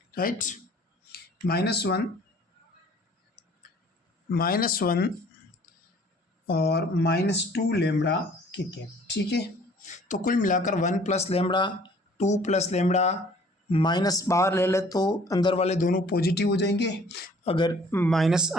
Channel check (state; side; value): normal; both; correlation 0.54